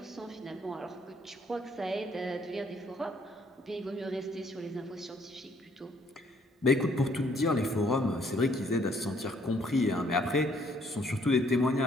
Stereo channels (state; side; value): normal; both; correlation 0.65